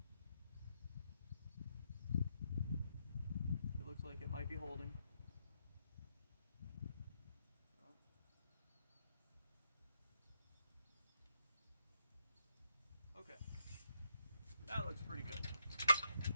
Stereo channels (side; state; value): both; inverted; correlation -0.79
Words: It looks like it might be holding. Okay, that looks pretty good.